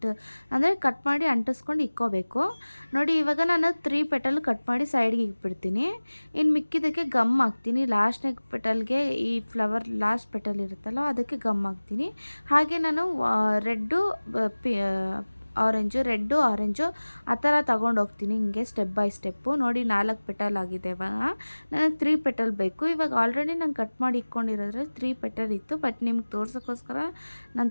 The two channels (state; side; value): inverted; both; correlation -1.00